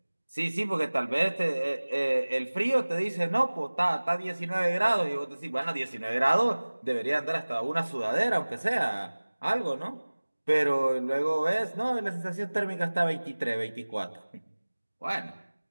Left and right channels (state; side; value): inverted; both; correlation -1.00